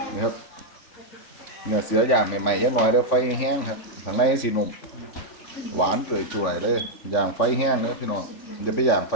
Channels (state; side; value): late; right; 3.5 ms